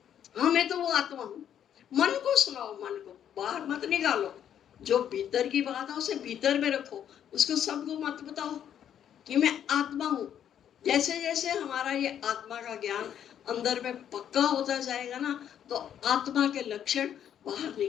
हाँ मैं तो वो आत्मा हूँ। मन को सुनाओ, मन को बाहर मत निकालो। जो भीतर की बात है उसे भीतर में रखो, उसको सबको मत बताओ कि मैं आत्मा हूँ। जैसे जैसे हमारा ये आत्मा का ज्ञान अंदर में पक्का होता जाएगा ना, तो आत्मा के लक्षण बाहर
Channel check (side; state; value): right; quieter; 9.6 dB